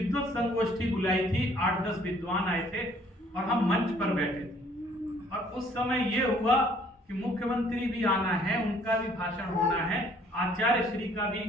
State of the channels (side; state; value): both; normal; correlation 0.60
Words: संगोष्ठी बुलाई थी, 8-10 विद्वान आए थे और हम मंच पर बैठे थे। और उस समय ये हुआ कि मुख्यमंत्री भी आना है, उनका भी भाषण होना है, आचार्य श्री का भी